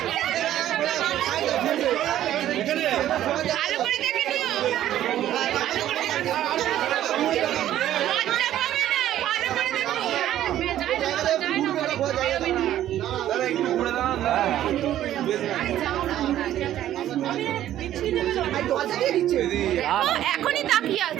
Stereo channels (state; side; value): quieter; left; 12.4 dB